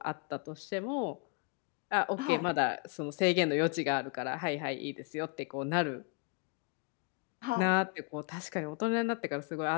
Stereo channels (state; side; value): quieter; right; 31.4 dB